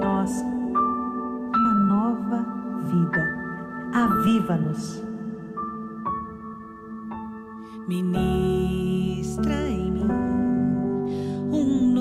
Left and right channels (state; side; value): identical; both; correlation 1.00